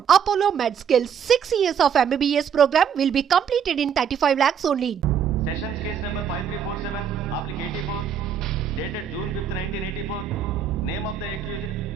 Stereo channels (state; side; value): quieter; left; 7.8 dB